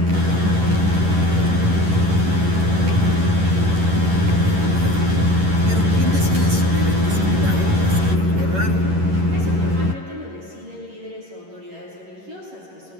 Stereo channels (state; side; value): late; left; 11 ms